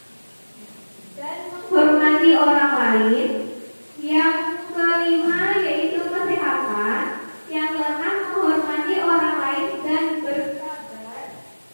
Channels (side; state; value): both; inverted; correlation -1.00